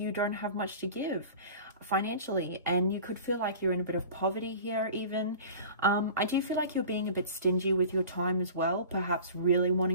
don't have much to give financially, and you could feel like you're in a bit of poverty here even. I do feel like you're being a bit stingy with your time as well, perhaps really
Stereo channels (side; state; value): both; inverted; correlation -0.40